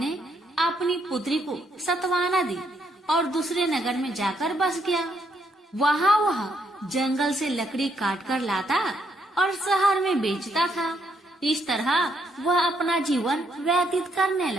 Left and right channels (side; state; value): both; normal; correlation 0.74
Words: अपनी पुत्री को सत्वाना दी और दूसरे नगर में जाकर बस गया। वहाँ वह जंगल से लकड़ी काट कर लाता और शहर में बेचता था। इस तरह वह अपना जीवन व्यतीत करने